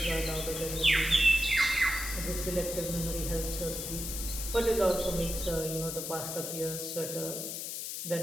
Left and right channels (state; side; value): noise; left; hiss, 5 dB below the sound